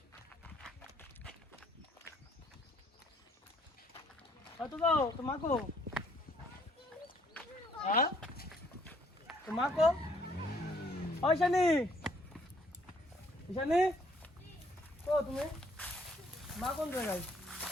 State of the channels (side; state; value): both; normal; correlation 0.65